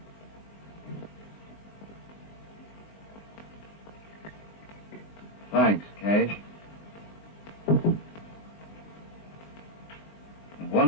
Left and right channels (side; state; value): right; late; 19 ms